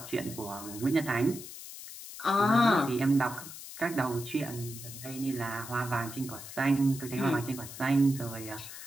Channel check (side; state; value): left; noise; hiss, 12 dB below the sound